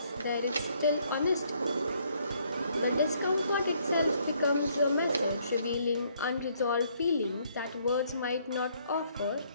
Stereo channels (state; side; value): inverted; both; correlation -0.68